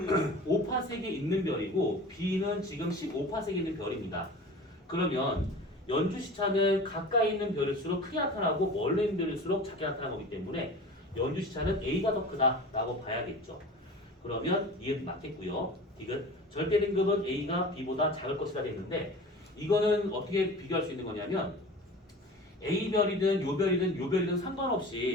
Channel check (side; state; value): both; normal; correlation 0.38